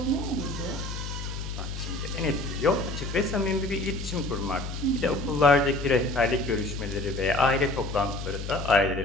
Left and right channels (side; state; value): left; noise; hum, 6 dB below the sound